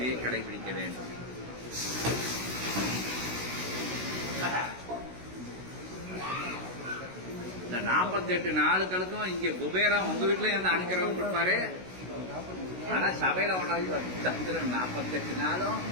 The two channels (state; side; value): late; left; 16 ms